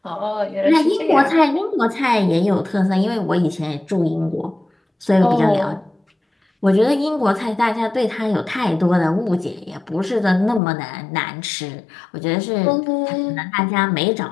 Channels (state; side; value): drops out; right; at 10.6 s